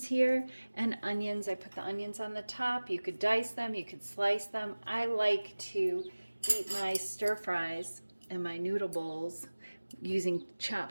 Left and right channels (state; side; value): inverted; both; correlation -1.00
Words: here and onions. I put the onions on the top. You could dice them, you could slice them. I like to eat my stir fries and my noodle bowls using